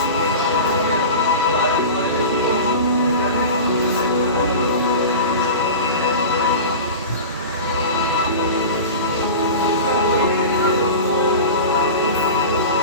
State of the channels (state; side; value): inverted; both; correlation -0.31